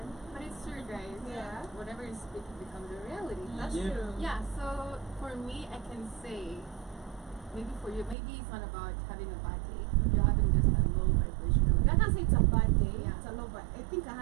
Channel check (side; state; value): left; drops out; at 8.2 s